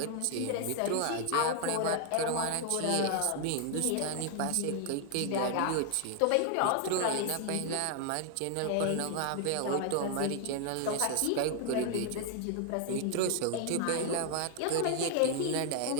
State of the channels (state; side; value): different; both; correlation 0.00